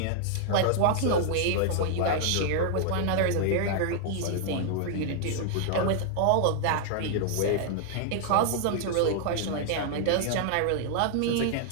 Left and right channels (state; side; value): different; both; correlation -0.01